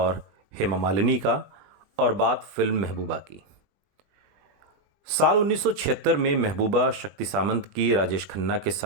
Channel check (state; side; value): late; left; 20 ms